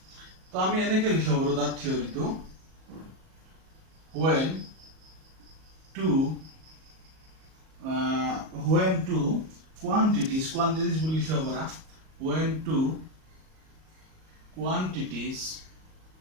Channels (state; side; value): late; left; 38 ms